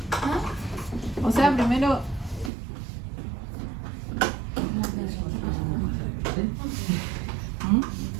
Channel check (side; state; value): left; drops out; at 2.5 s